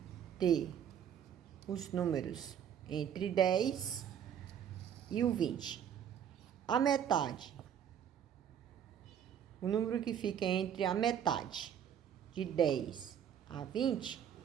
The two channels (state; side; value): quieter; left; 9.0 dB